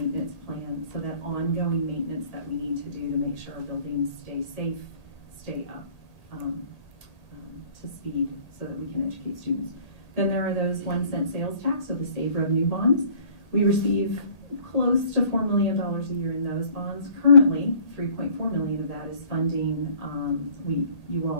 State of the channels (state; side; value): late; right; 1.8 ms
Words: plan, so that ongoing maintenance that we need to do to make sure our buildings stay safe, stay up to speed so that we can educate students. Then there are those 1 cent sales tax, so the SAVE revenue bonds. We receive close to $4 million a year in those bonds. Currently, $3.4 million of that is funding. You